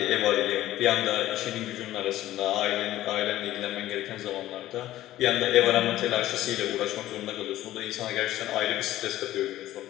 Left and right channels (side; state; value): right; quieter; 14.4 dB